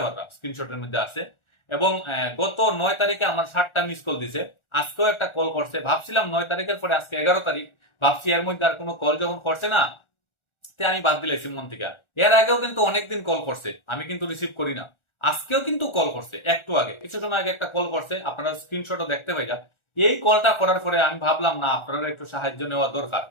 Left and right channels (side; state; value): right; late; 1.4 ms